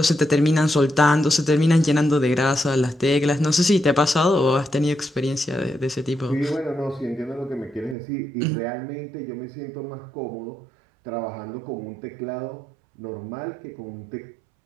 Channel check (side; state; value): left; drops out; at 8.0 s